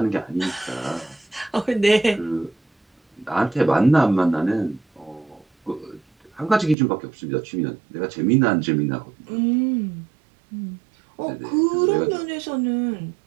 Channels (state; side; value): drops out; left; at 6.8 s